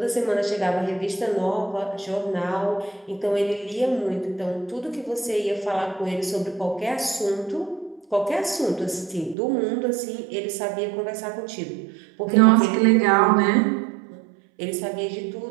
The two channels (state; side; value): drops out; left; at 9.3 s